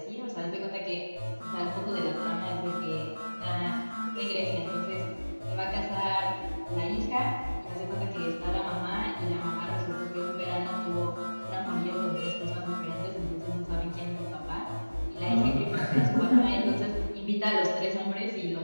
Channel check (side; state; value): both; inverted; correlation -1.00